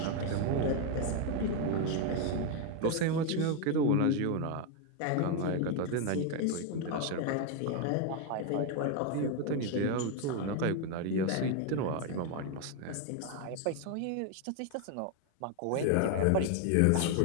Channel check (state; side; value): different; both; correlation 0.01